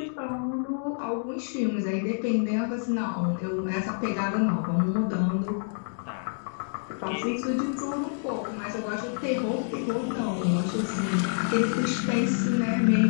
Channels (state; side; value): silent; right; digital silence